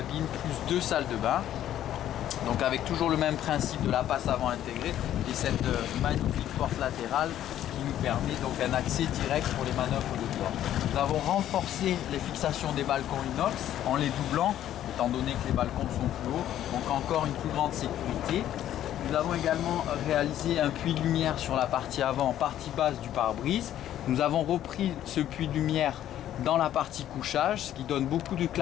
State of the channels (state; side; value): quieter; right; 11.8 dB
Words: plus 2 salles de bain. Donc avec toujours le même principe de la passe avant intégrée et cette magnifique porte latérale qui nous permet donc un accès direct pour les manœuvres de bord. Nous avons renforcé les fixations des balcons inox en les doublant, étant donné que les balcons sont plus hauts, donc encore une plus grande sécurité. Nous avons également réalisé un puits de lumière sur la partie avant, partie basse du pare-brise. Nous avons repris ce puits de lumière dans la partie couchage, ce qui donne beaucoup de